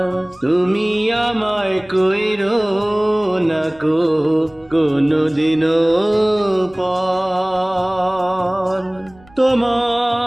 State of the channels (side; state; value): right; noise; rumble, 27 dB below the sound